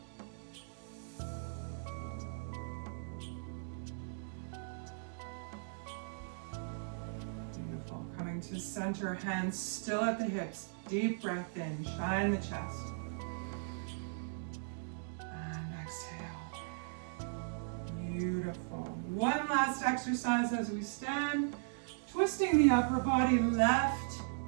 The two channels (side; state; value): left; silent; digital silence